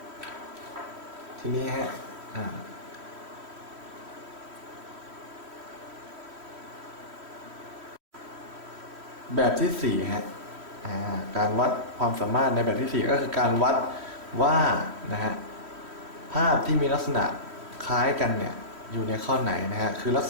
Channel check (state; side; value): late; left; 3.1 ms